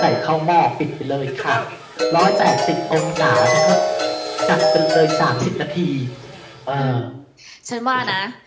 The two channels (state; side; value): identical; both; correlation 1.00